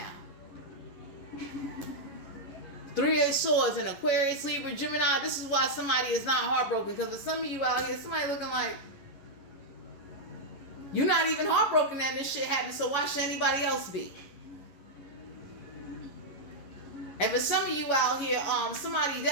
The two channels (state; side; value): late; right; 11 ms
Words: Three of Swords and Aquarius, Libra, Gemini. This is why somebody is not heartbroken. Because for some of you out here, somebody looking like you're not even heartbroken that this shit happened. So why should anybody else be? And for some of you out here, somebody